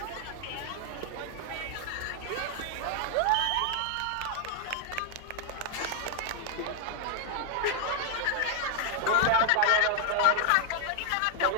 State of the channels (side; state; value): both; different; correlation 0.00